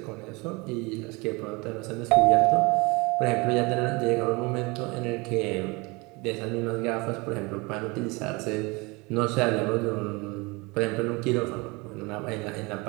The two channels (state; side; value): quieter; left; 26.0 dB